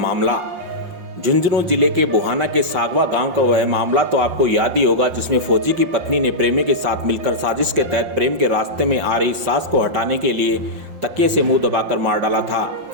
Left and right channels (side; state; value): left; late; 5.6 ms